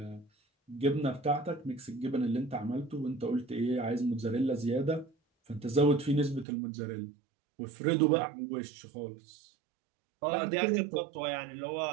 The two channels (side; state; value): left; drops out; at 6.5 s